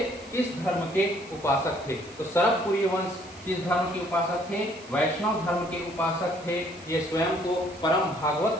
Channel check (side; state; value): right; noise; hiss, 22 dB below the sound